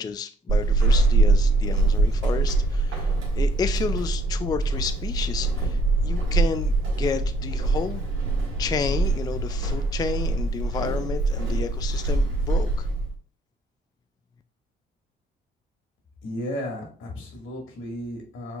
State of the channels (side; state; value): both; normal; correlation 0.64